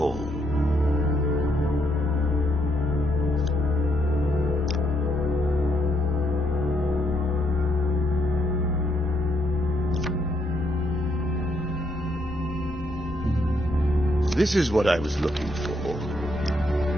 This is what I was looking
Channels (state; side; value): normal; both; correlation 0.74